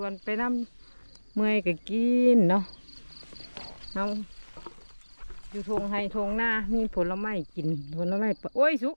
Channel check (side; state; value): both; inverted; correlation -1.00